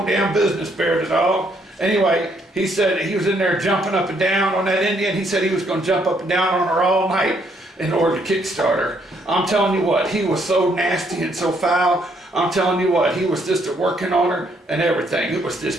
damn business, Bear the dog. Anyway, he said he was in there jumping up and down on that Indian. He said he was going to jump up and down on her all night in order to kickstart her. I'm telling you what, he was so nasty and so foul. I'm telling you what, he was just working on her and everything. It was this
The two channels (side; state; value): both; normal; correlation 0.70